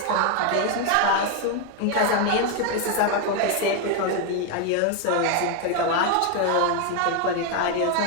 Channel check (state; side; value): different; both; correlation 0.01